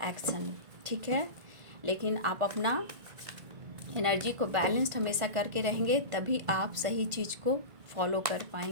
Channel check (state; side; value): late; left; 1.5 ms